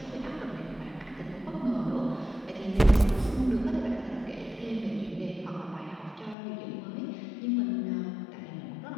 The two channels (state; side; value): drops out; right; at 6.4 s